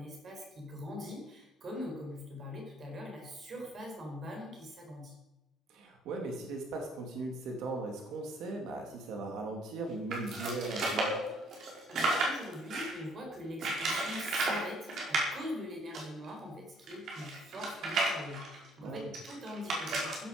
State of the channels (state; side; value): normal; both; correlation 0.62